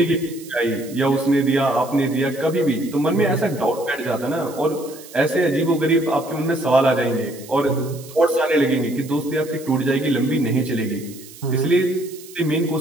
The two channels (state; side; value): noise; right; hiss, 18 dB below the sound